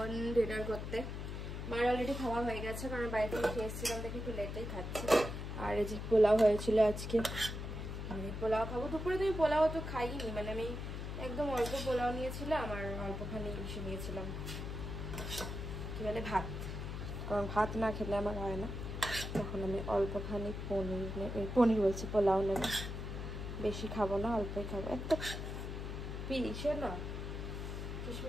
ডিনার করতে। মার অলরেডি খাওয়া হয়ে গেছে, কারণ বাড়িতে খেয়ে এসেছিলাম দেখে একটু লেটেই খাচ্ছি। আর এই যে পোলাও হয়েছিল আজকে, আমি পোলাও খাবো। দুপুরে তো আমি পোলাও তো খাইনি, মানে আমি একদম অল্প পোলাও নিয়েছিলাম আর অল্পখানি ইসে নিয়েছিলাম, কি বলে ভাত, কারণ ভাত না খেলে আমার হয় না। তখন আমি অল্পখানি পনির বলছি পোলাও নেব, বেশি খাবো না, অল্পই খাবো। একটা পিসে না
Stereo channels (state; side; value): noise; left; hum, 5 dB below the sound